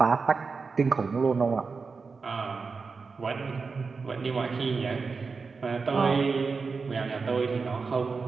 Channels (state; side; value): quieter; left; 4.7 dB